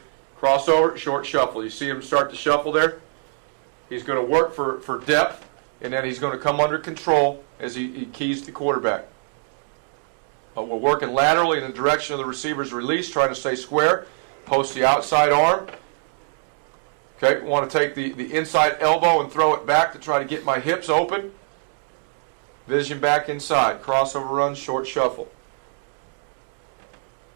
Crossover, short shuffle. You see him start to shuffle there? He's going to work for depth, and then he's going to come under control as he keys the quarterback. We're working laterally in the direction of the receiver's release, trying to stay square. Post the outside arm. Okay, want to take the inside elbow and throw it back to try to get my hips open. Vision back inside. Crossover run, short shuffle.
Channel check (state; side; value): silent; left; digital silence